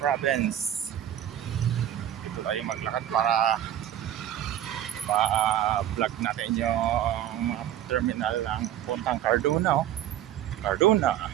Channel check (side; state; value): left; quieter; 11.5 dB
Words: Dito tayo maglakad para ma-vlog natin yung mga terminal ng puntang Cardona. Cardona